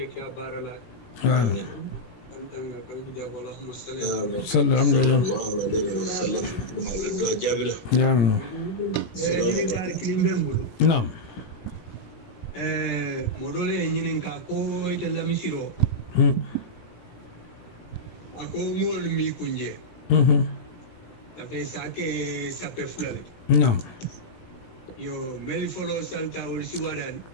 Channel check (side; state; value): right; late; 17 ms